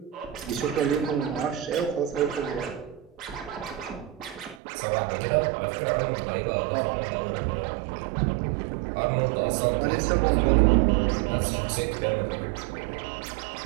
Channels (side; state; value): left; drops out; at 4.6 s